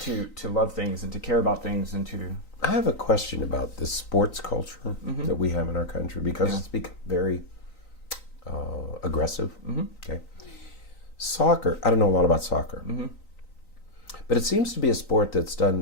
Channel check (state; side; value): late; right; 3.9 ms